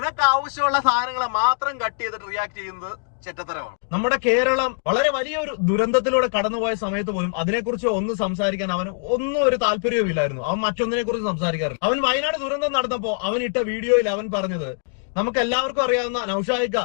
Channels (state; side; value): silent; right; digital silence